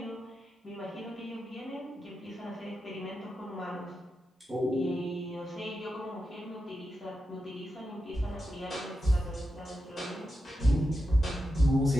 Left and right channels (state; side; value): normal; both; correlation 0.88